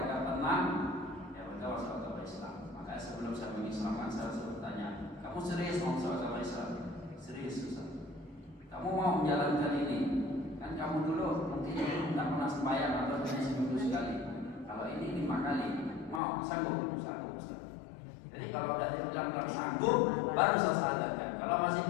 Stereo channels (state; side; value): drops out; right; at 16.2 s